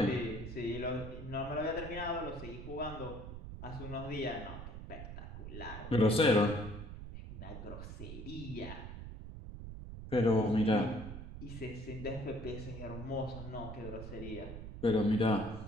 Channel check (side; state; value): right; noise; rumble, 10 dB below the sound